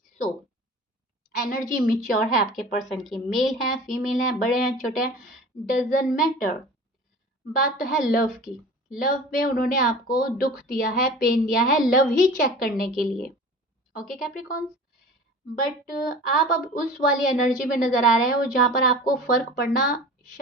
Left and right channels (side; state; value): both; normal; correlation 0.39